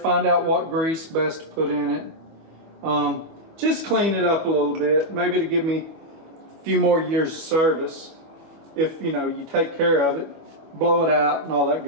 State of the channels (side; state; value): left; late; 25 ms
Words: out what grease best to put in it. Just clean it up a little bit, maybe to give me a few more years of service. If you take care of it, blow it out and all that